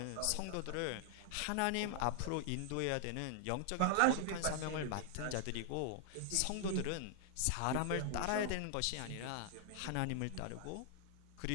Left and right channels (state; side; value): different; both; correlation 0.00